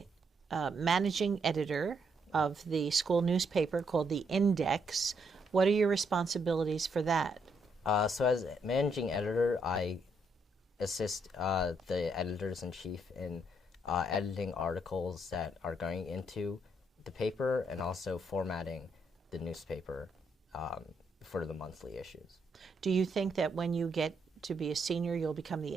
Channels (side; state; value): both; normal; correlation 0.75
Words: managing editor of the school newspaper called The Index. What are your responsibilities for that? So as managing editor, I assist the editors-in-chief in editing articles that are going into the paper and also formatting the newspaper for the monthly issues. Do you think that when you get to be a senior, you'll become the